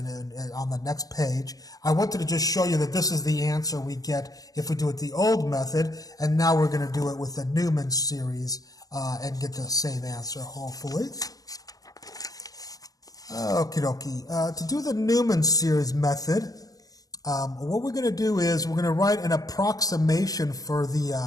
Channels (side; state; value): right; late; 0.18 ms